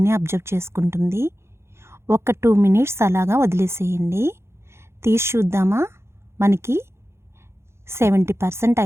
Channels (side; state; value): left; late; 0.13 ms